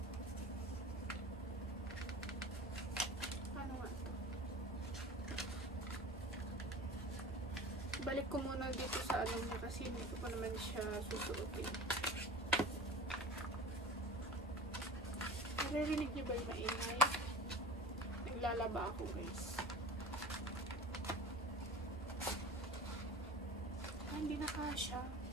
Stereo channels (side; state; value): both; normal; correlation 0.37